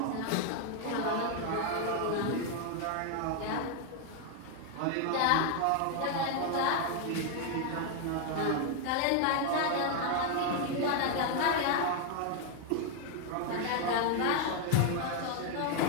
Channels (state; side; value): different; both; correlation 0.01